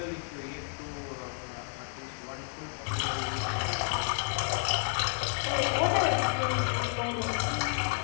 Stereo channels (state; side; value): silent; right; digital silence